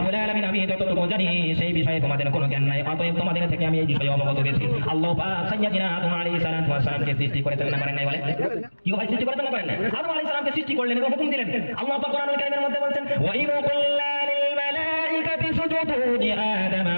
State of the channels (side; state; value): both; inverted; correlation -1.00